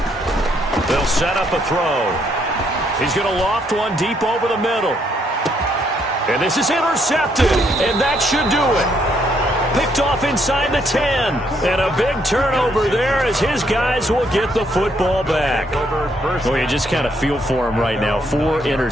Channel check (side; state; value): both; normal; correlation 0.72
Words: They'll set up a throw. He's going to loft one deep over the middle. And this is intercepted, and that should do it. Picked off inside the 10. And a big turnover there as his guys will get the football back. Well, you just kind of feel for him right now. 4